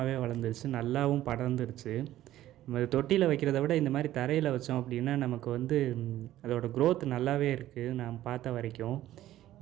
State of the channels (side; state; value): left; quieter; 13.9 dB